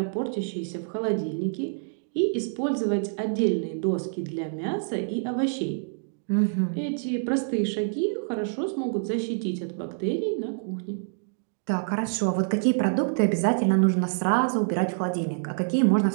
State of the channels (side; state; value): left; silent; digital silence